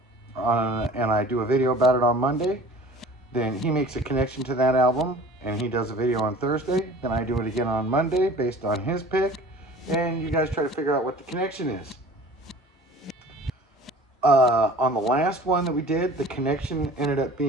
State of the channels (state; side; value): normal; both; correlation 0.45